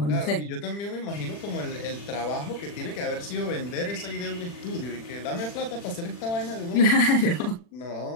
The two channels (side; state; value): right; late; 40 ms